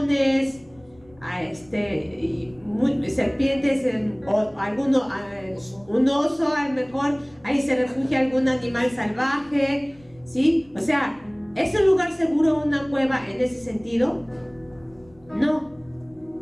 serpientes, un oso, a lo mejor ahí se refugia algún animal salvaje, ¿sí? O sea, ¿es un lugar seguro una cueva en ese sentido? No,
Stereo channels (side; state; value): left; noise; rumble, 28 dB below the sound